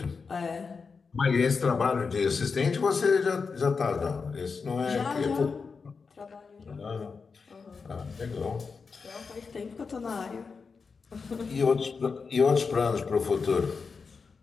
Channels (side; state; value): right; quieter; 5.0 dB